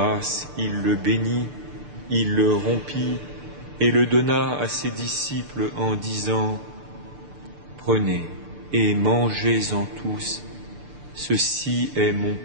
il le bénit, il le rompit et le donna à ses disciples en disant : « Prenez et mangez-en tous, ceci est mon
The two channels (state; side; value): late; left; 6.8 ms